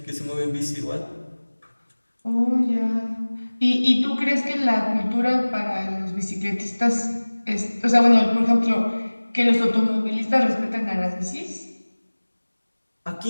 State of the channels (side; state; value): both; inverted; correlation -1.00